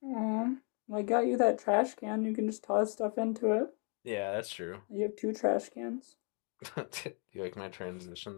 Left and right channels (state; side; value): quieter; right; 38.4 dB